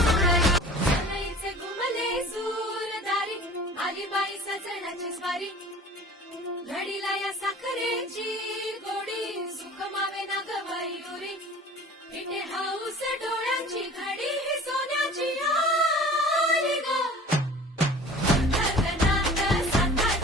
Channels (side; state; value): both; normal; correlation 0.44